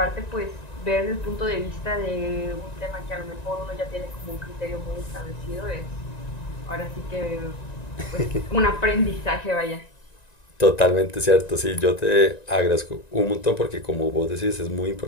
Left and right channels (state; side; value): late; right; 1.9 ms